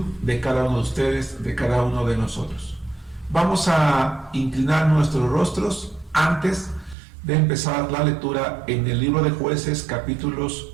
de cada uno de ustedes, de cada uno de nosotros. Vamos a inclinar nuestros rostros antes de empezar la lectura en el libro de Jueces, capítulos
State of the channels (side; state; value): left; drops out; at 7.0 s